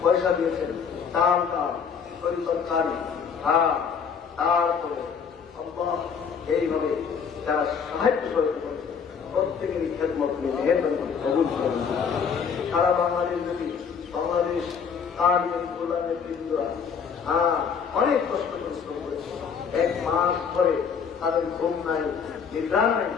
পয়সা দিয়েছেন, দান দান তরকারি, তারপরে এইভাবে যারা সাহায্য করতে করেছে প্রত্যেকেরই খেদমত মেহেরবানি করে কবুল করেন। সারা বাংলাদেশ যদি বাংলাদেশ আর গোলামের বৃন্দরা অনেক কষ্ট পরিশ্রম করেছে, এক মাস ধরে তাদের ঘুম নাই, নিদ্রা নাই,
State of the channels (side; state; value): right; quieter; 6.5 dB